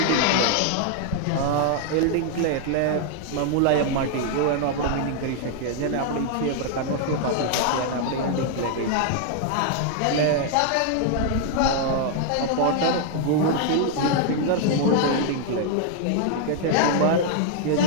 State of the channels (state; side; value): different; both; correlation 0.00